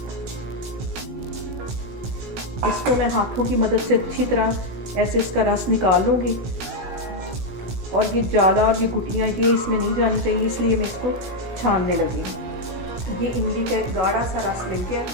इसको मैं हाथों की मदद से अच्छी तरह ऐसे इसका रस निकाल लूँगी और ये जाला और ये गुटियाँ ये इसमें नहीं जानी चाहिए, इसलिए मैं इसको छानने लगी। ये इमली का एक गाढ़ा सा रस मिल गया।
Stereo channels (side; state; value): left; late; 17 ms